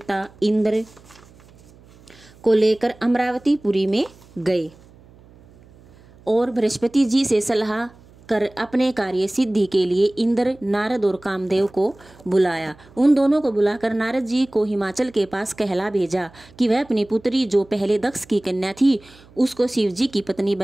इंद्र को लेकर अमरावतीपुरी में गए और बृहस्पति जी से सलाह कर अपने कार्य सिद्धि के लिए इंद्र, नारद और कामदेव को बुलाया। उन दोनों को बुलाकर नारद जी को हिमाचल के पास कहला भेजा कि वह अपनी पुत्री जो पहले दक्ष की कन्या थी उसको शिव जी की पत्नी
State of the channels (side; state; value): right; noise; hum, 26 dB below the sound